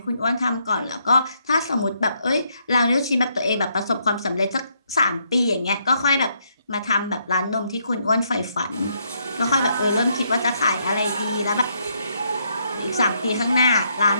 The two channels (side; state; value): both; inverted; correlation -0.74